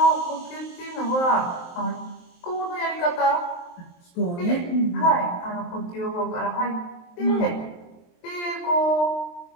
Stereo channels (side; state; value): right; late; 23 ms